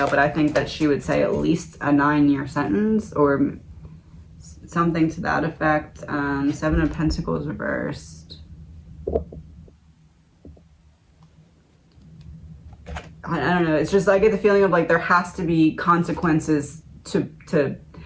but I think that she would say at least a 9-year sentence or something to that effect. Seven of Pentacles reversed. I don't know. It's just, I get the feeling of like there has to be consequences to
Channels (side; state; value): both; identical; correlation 1.00